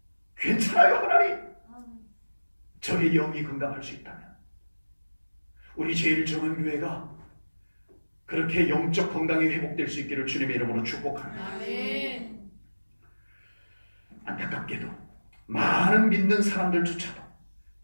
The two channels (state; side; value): inverted; both; correlation -1.00